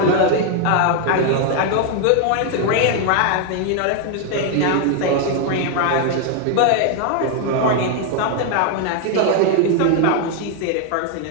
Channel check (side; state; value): both; different; correlation 0.01